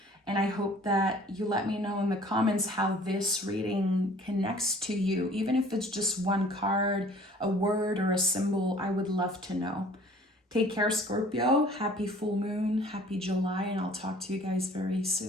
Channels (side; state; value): both; normal; correlation 0.51